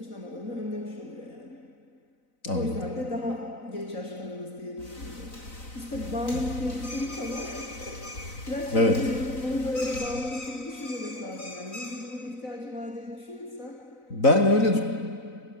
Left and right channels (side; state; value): right; late; 4.0 ms